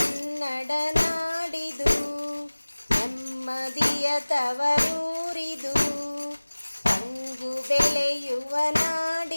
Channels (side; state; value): both; inverted; correlation -1.00